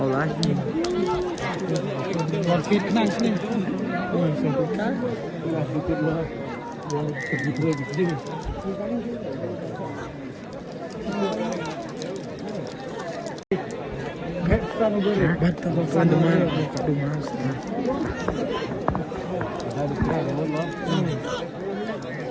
lah. Còn thịt năng sini. Sampai kan? Sedikit lah. Sedikit sedikit. Anu beri. Batal anu mana? Dumas.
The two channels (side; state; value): both; identical; correlation 1.00